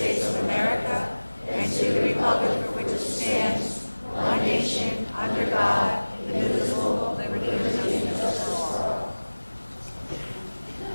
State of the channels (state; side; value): inverted; both; correlation -1.00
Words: of America and to the republic for which it stands, one nation, under God, indivisible, with liberty and justice for all.